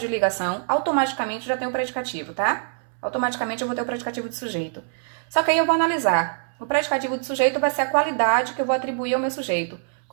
de ligação, automaticamente eu já tenho o predicativo, tá? Automaticamente eu vou ter o predicativo de sujeito. Só que aí eu vou analisar. O predicativo de sujeito vai ser a qualidade que eu vou atribuir ao meu sujeito.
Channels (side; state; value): left; silent; 63 dB below the other